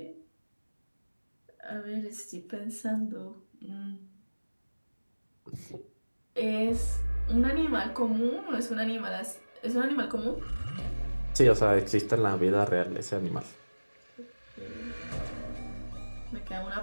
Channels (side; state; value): both; inverted; correlation -1.00